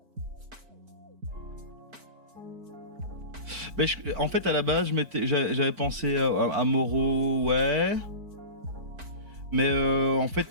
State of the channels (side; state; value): left; late; 4.5 ms